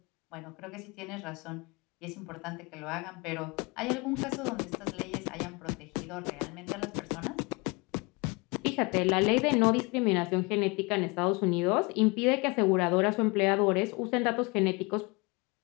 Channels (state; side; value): quieter; right; 27.6 dB